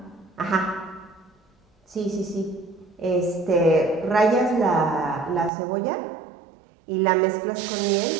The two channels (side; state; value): left; drops out; at 5.5 s